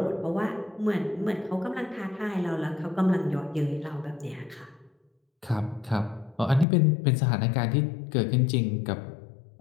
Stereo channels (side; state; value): right; drops out; at 6.7 s